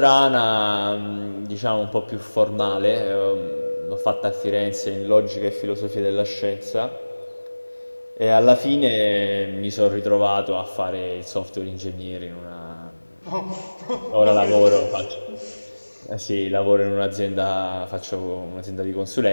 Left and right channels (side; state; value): both; inverted; correlation -1.00